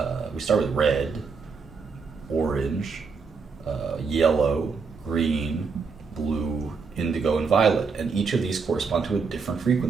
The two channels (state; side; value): quieter; left; 5.1 dB